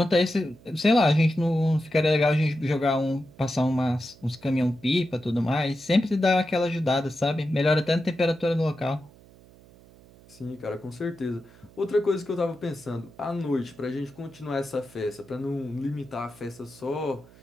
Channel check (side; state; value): right; noise; hum, 24 dB below the sound